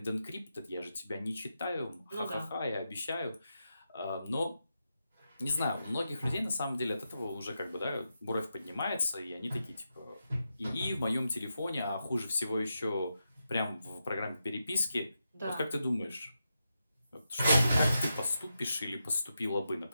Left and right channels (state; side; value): inverted; both; correlation -0.87